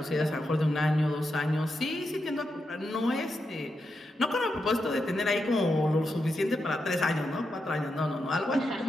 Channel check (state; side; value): normal; both; correlation 0.86